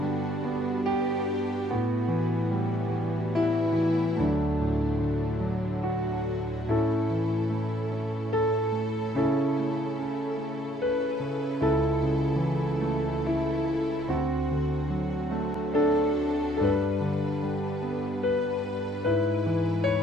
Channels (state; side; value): normal; both; correlation 0.66